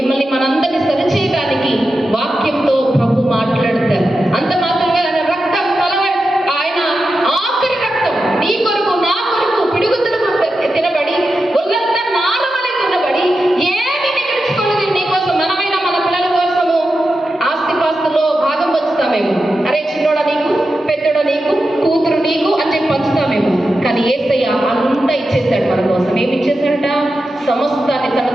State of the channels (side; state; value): both; normal; correlation 0.90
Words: మనందరినీ సరిచేయడానికి వాక్యంతో ప్రభు మాట్లాడతారు. అంత మాత్రమే ఆయన రక్తం ఆయన ఆఖరి రక్తం నీ కొరకు నా కొరకు పిడుగుతులకు తినబడి ఒళ్ళంతా నాలుమలై తినబడి ఏమి మిగిల్చుకోలేదు నీ కోసం. మనమైనా మన పిల్లల కోసము ఆస్తిపాస్తులో భాగం పంచుతామేమో, అరే చిన్నోడ నీకు, పెద్దోడ నీకు, కూతురు నీకు అని చెప్పి పంచుతామేమో. కానీ యేసయ్య అంతా ఇచ్చేశాడు మన కోసం. ఏమి ఇచ్చేశాడట? సమస్తాన్ని తన